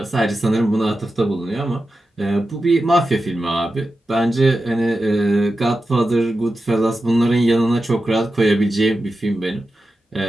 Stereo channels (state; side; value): normal; both; correlation 0.91